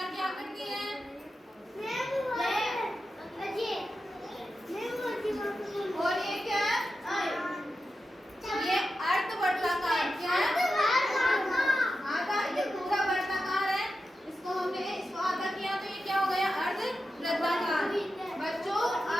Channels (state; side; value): normal; both; correlation 0.90